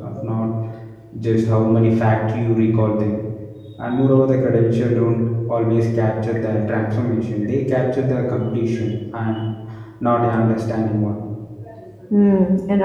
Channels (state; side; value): identical; both; correlation 1.00